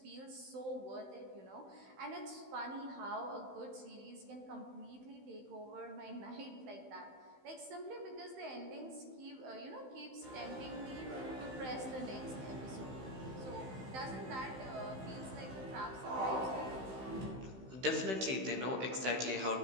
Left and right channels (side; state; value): left; late; 15 ms